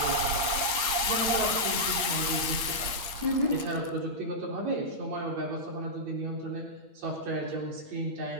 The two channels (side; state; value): left; late; 8.7 ms